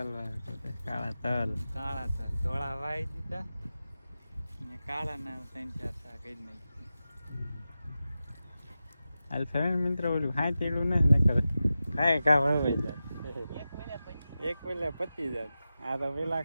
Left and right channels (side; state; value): both; inverted; correlation -0.93